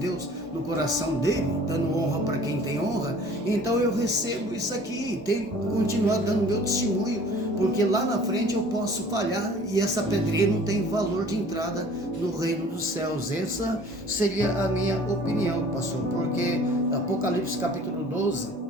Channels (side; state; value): both; normal; correlation 0.49